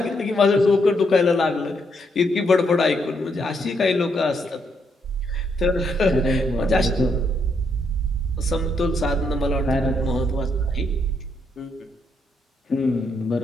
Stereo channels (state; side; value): normal; both; correlation 0.76